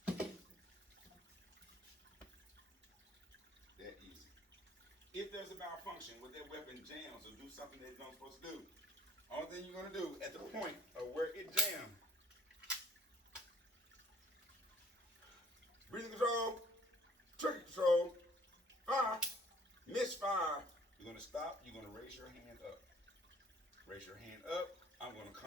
That easy. If there's a malfunction with that weapon jams or do something that it's not supposed to do, only thing you're going to do at the point of where it jammed, breathing control, trigger control, fire, misfire. You're going to stop. You're going to raise your hand up. Raise your hand up. I'm going to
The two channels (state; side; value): normal; both; correlation 0.57